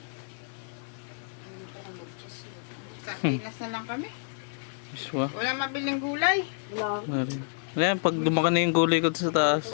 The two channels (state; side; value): silent; right; digital silence